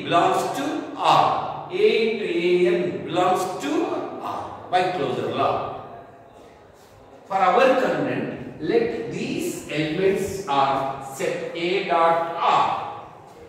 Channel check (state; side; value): identical; both; correlation 1.00